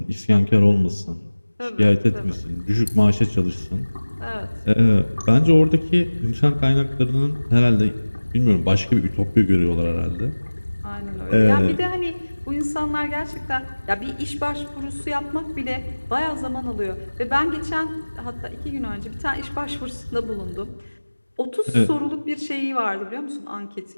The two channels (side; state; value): both; inverted; correlation -1.00